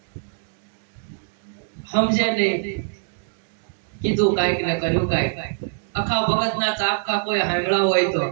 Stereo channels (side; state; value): left; silent; digital silence